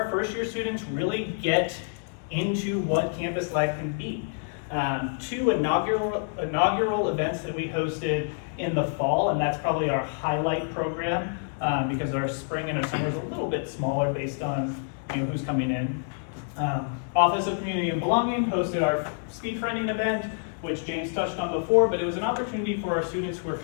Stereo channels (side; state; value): right; silent; digital silence